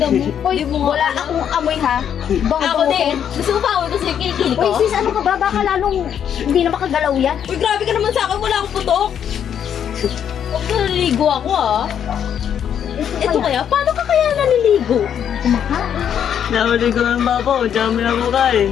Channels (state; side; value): quieter; right; 8.9 dB